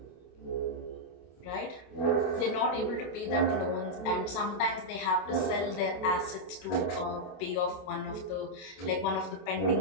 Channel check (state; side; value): late; right; 27 ms